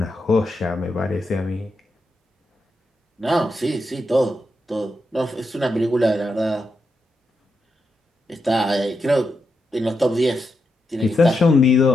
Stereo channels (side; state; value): both; normal; correlation 0.85